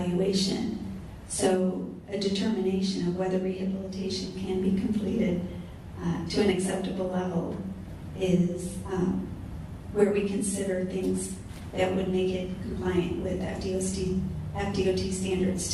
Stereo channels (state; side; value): identical; both; correlation 1.00